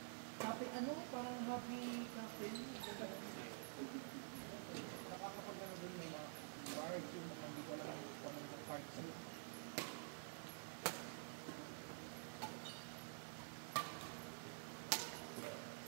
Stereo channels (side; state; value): left; silent; digital silence